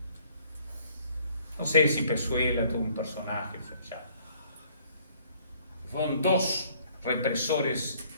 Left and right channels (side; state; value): both; inverted; correlation -0.60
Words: No sé si Pezuela tuvo un personaje, ya. Fueron 2 represores